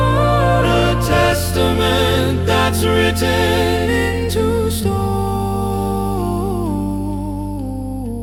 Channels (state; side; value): identical; both; correlation 1.00